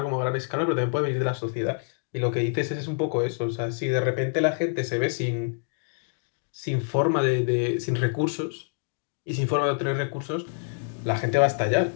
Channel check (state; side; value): silent; right; digital silence